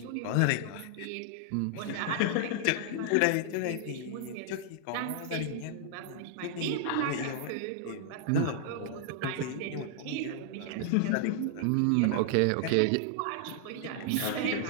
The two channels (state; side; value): different; both; correlation 0.00